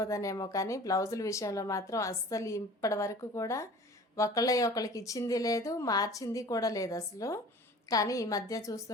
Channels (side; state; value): both; normal; correlation 0.44